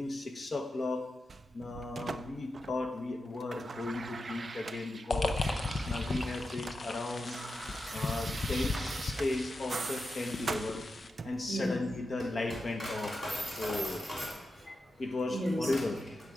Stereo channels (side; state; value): both; normal; correlation 0.90